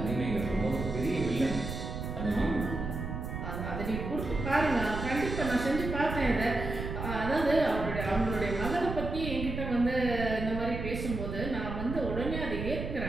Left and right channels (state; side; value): noise; right; rumble, 5 dB below the sound